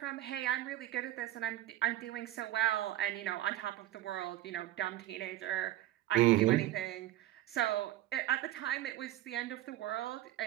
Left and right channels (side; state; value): left; quieter; 14.2 dB